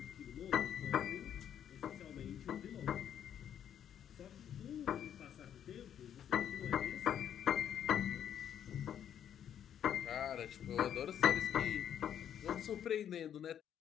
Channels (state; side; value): quieter; right; 9.5 dB